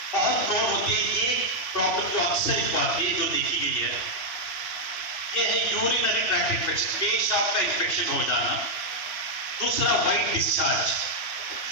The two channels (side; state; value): right; late; 3.0 ms